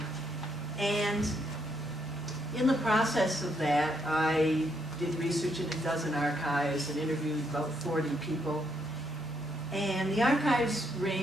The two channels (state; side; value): normal; both; correlation 0.75